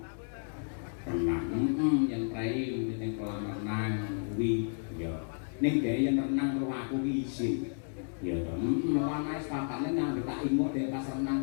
Renang. Yen prei ning kolam renang kuwi ya. Ning dhek yen renang karo aku ki isin. Ya to. Ana wis papane nang tak imut dhek pas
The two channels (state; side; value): silent; right; 56 dB below the other